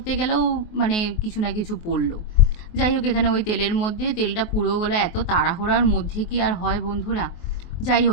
গেলেও মানে কিছু না কিছু পড়লো। যাই হোক, এখানে ওই তেলের মধ্যে তেলটা পুড়েও গেলো। এত তাড়াহুড়ার মধ্যে কি আর হয় বন্ধুরা। যাই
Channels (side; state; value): right; late; 23 ms